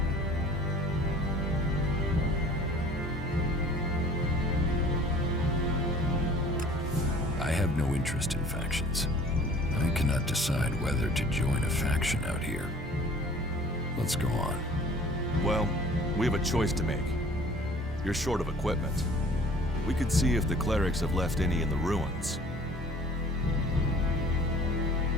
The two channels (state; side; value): normal; both; correlation 0.50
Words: I have no interest in factions. I cannot decide whether to join a faction out here. Let's go on. Well, we have a choice to make. You're short of equipment. We could see if the clerics have left any in the ruins.